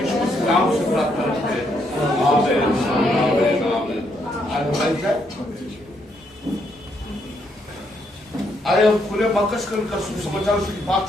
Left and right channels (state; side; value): normal; both; correlation 0.75